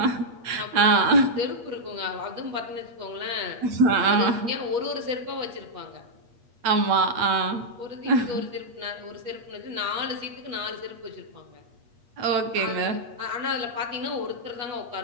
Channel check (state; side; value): late; left; 8.4 ms